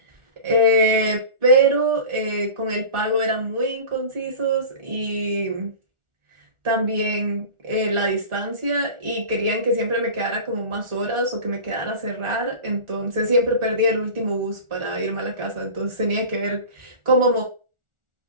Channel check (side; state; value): left; late; 1.4 ms